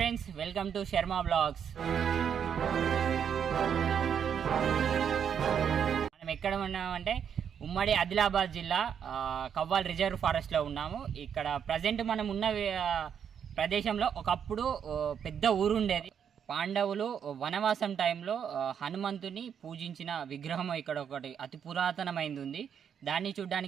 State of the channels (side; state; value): left; quieter; 8.0 dB